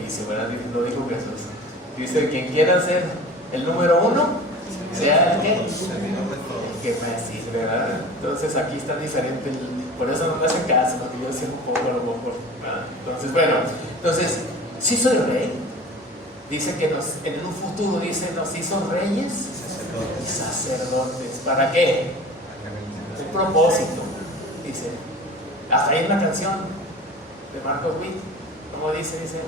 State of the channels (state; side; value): normal; both; correlation 0.39